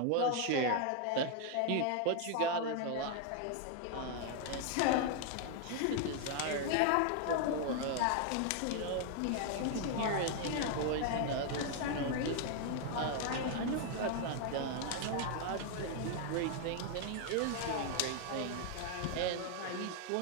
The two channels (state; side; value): different; both; correlation 0.00